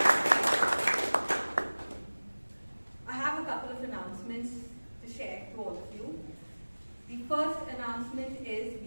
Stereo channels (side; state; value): both; inverted; correlation -1.00